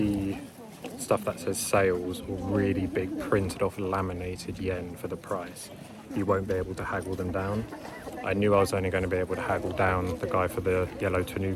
stuff that says sales or really big printed off laminated yen for the price, you won't be able to haggle them down. I knew I was only going to be able to haggle down the guy for the yellow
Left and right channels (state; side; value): identical; both; correlation 1.00